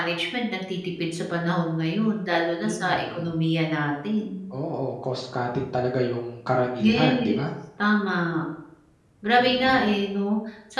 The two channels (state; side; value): identical; both; correlation 1.00